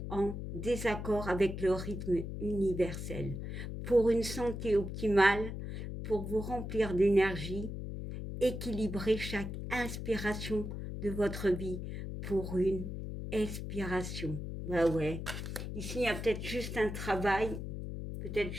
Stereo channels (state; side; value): noise; left; hum, 6 dB below the sound